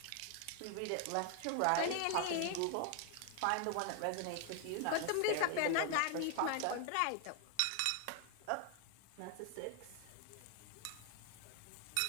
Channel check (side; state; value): both; different; correlation 0.00